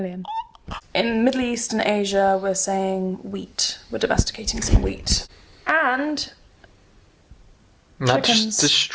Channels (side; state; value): both; identical; correlation 1.00